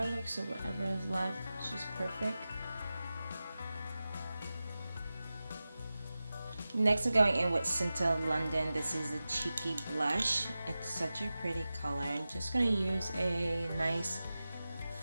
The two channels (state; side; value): inverted; both; correlation -0.95